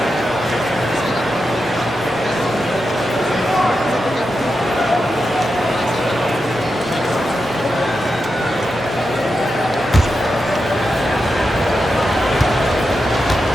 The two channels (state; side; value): normal; both; correlation 0.88